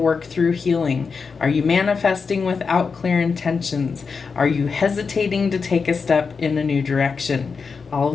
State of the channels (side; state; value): right; quieter; 5.2 dB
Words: through healing? Are you manifesting without clear intentions? Are you hesitating to take a step in a new direction? All